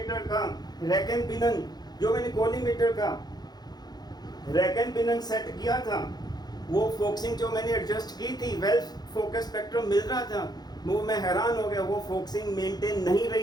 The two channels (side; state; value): right; late; 0.19 ms